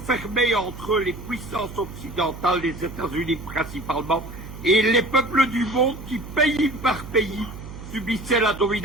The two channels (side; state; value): right; noise; hum, 12 dB below the sound